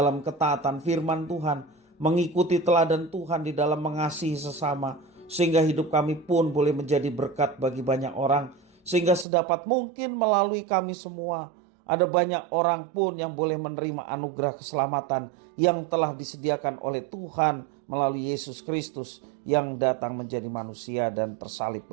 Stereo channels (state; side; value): drops out; left; at 9.2 s